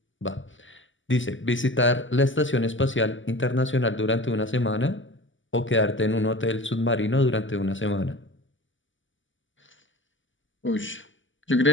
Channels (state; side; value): late; right; 0.55 ms